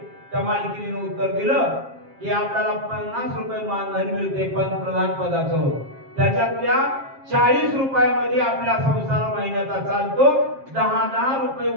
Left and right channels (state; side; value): late; left; 7.4 ms